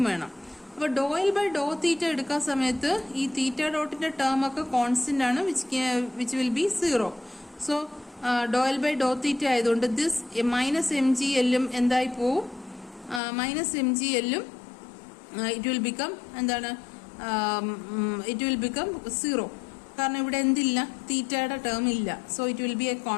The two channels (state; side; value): drops out; right; at 13.2 s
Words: വേണം. അപ്പോൾ ഡോ എൽ ബൈ ഡോ തീറ്റ എടുക്കാൻ സമയത്ത് ഈ തീറ്റ ഡോട്ടിന്റെ ടേം ഒക്കെ കോൺസ്റ്റന്റ് ആണ്, which will be 0. So Dr L by Dr theta ആയതുകൊണ്ട് ദിസ് മൈനസ് എം ജി എല്ലും എന്തായി പോവും, മൈനസ് എം ജി എല്ലും ഇറ്റ് വിൽ ബിക്കം എന്താണ്, ഇറ്റ് വിൽ ബിക്കം 0. കാരണം ഇവിടെ എന്തില്ല, തീറ്റയുടെ ടേം ഇല്ല. So it will be a